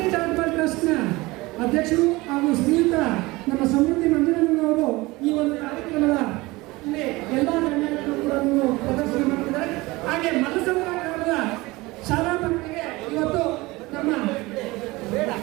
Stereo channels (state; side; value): quieter; left; 21.6 dB